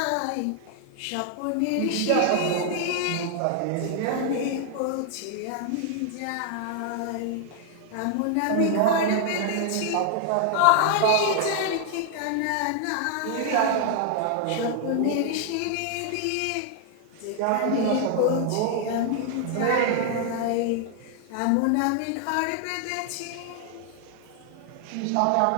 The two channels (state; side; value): different; both; correlation 0.00